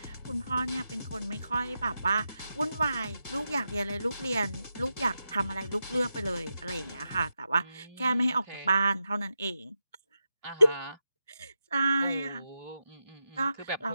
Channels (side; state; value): both; inverted; correlation -0.88